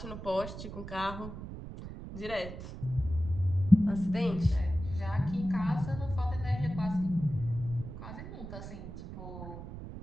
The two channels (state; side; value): noise; right; rumble, 10 dB below the sound